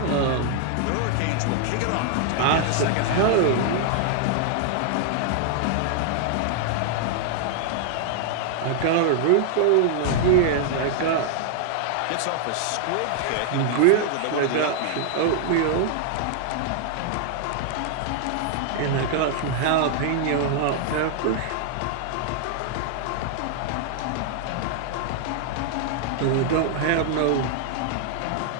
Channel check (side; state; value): both; different; correlation 0.00